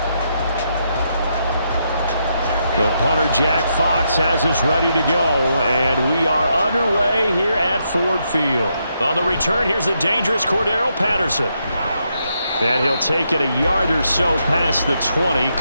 The punter, Jack Fox, has us ready to go, and we are underway here at Ford Field. On the return, here's the dangerous Cordero Patterson. And he'll take it a yard or so past the 20,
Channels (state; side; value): inverted; both; correlation -0.79